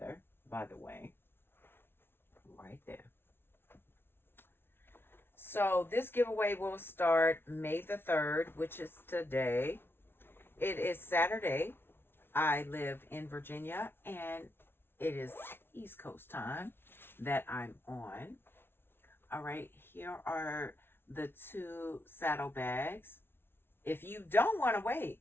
by the way, right there. So this giveaway will start May the 3rd, which is today. It is Saturday. I live in Virginia, and it is East Coast time that I'm on. All right, here are the 2 saddle bags. If you don't want to wait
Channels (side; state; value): right; late; 0.11 ms